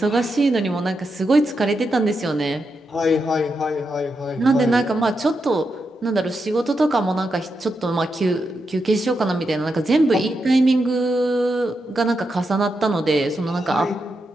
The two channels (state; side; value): normal; both; correlation 0.85